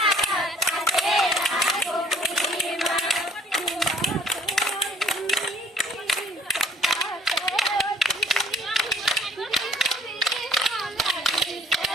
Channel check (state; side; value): normal; both; correlation 0.57